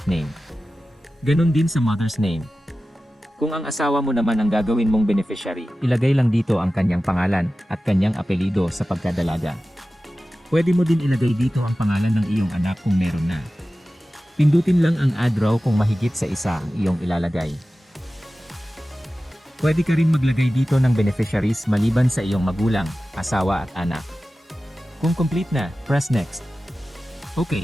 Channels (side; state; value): both; normal; correlation 0.95